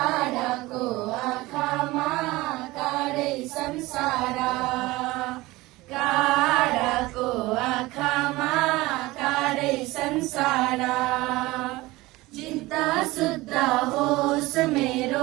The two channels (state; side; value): quieter; left; 20.0 dB